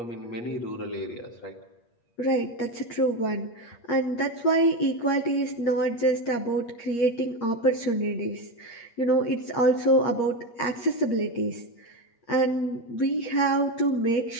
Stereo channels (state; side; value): late; right; 8.5 ms